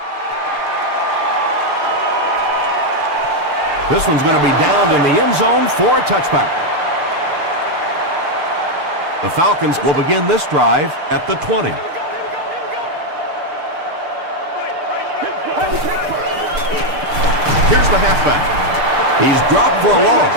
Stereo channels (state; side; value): late; left; 6.6 ms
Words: This one's going to be downed in the end zone for a touchback. The Falcons will begin this drive at the 20. Here's the halfback. He's dropped for a loss.